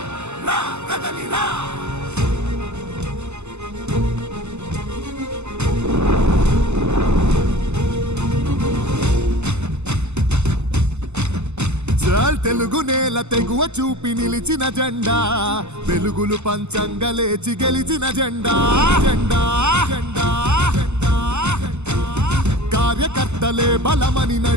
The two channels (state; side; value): late; left; 0.82 ms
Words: రా కదలిరా తెలుగు నేల తెగువ చూపి నిలిచిన జెండా వెలుగులు పంచంగా లేచి గెలిచిన జెండా జెండా జెండా కార్యకర్తలే బలమని